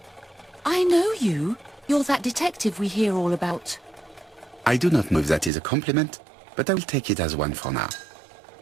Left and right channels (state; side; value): drops out; left; at 5.5 s